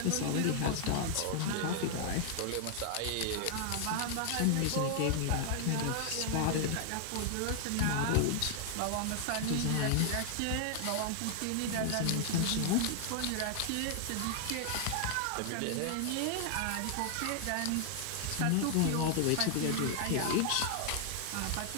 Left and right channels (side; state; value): both; different; correlation 0.00